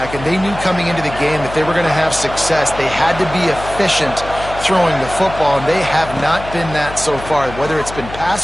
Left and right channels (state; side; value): noise; left; hum, 12 dB below the sound